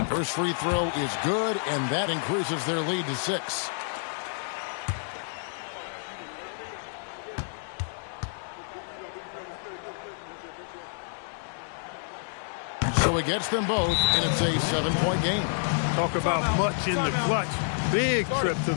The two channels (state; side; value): silent; right; 59 dB below the other